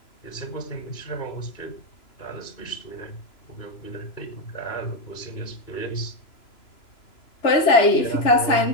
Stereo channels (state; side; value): late; right; 3.0 ms